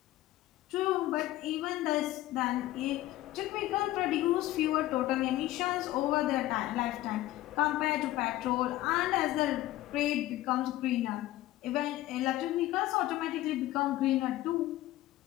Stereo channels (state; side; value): quieter; right; 15.7 dB